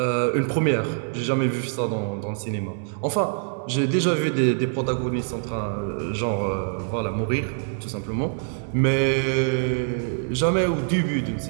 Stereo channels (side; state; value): left; silent; digital silence